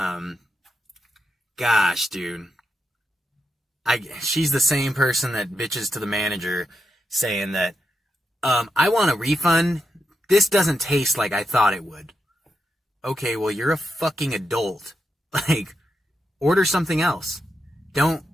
Gosh, dude. She's the same person that bitches to the manager saying that, I want a refund. This doesn't taste like I thought it would. okay, well, you're a fucking adult. Like, order something else. Don't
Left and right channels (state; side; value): normal; both; correlation 0.85